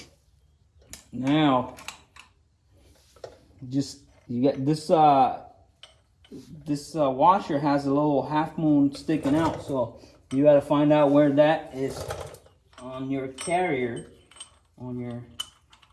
Now, you get this. This washer has a little half moon sticking out, so you got to find out where that is on your carrier, on your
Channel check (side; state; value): both; identical; correlation 1.00